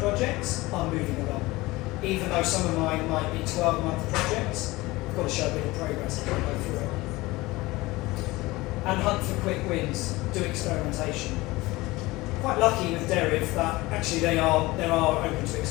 are moving along. Even though some of mine might be 12-month projects, you've got to show a bit of progress as you go through it. And hunt for quick wins. Do experimentation. Quite lucky with Deriv that actually they are open to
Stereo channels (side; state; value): right; quieter; 20.5 dB